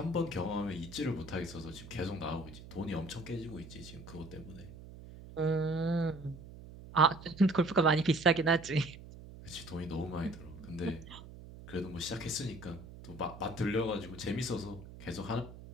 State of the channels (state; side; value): noise; right; hum, 15 dB below the sound